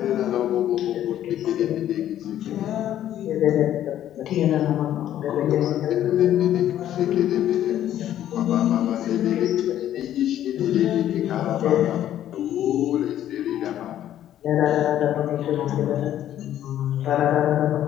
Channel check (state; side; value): quieter; right; 11.7 dB